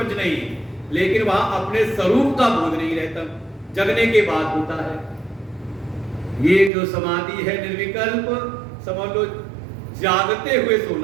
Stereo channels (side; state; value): left; drops out; at 6.7 s